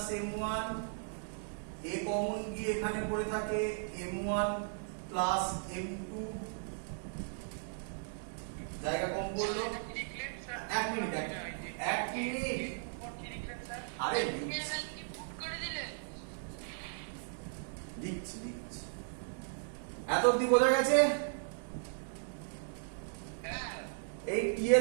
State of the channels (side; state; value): left; silent; digital silence